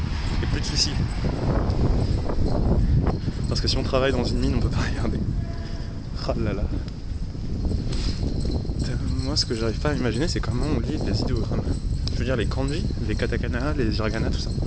et plus de soucis. Parce que si on travaille dans une mine, on peut pas regarder. Ah là là. Moi, ce que j'arrive pas à imaginer, c'est comment on lit les idéogrammes. Je veux dire, les kanji, les katakana, les hiragana, tout ça.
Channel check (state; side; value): identical; both; correlation 1.00